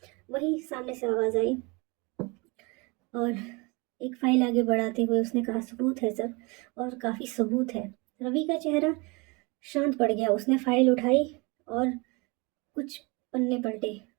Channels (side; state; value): left; quieter; 27.8 dB